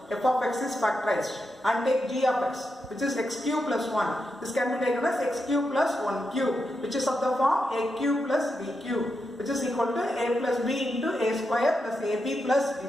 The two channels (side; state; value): both; normal; correlation 0.86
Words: F of x is factorized. And take g of x, which is x cube plus 1. This can be taken as x cube plus 1 cube, which is of the form a cube plus b cube, which is equal to a plus b into a square plus ab plus b